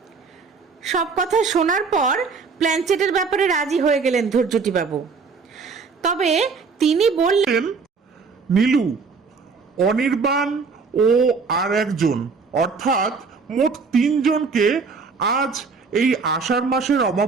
সব কথা শোনার পর প্ল্যানচেটের ব্যাপারে রাজি হয়ে গেলেন ধৈর্যটিবাবু। তবে তিনি বললেন, নীলু, অনির্বাণ ও আর একজন, অর্থাৎ মোট 3 জনকে আজ এই আষাঢ় মাসের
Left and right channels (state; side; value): quieter; left; 4.9 dB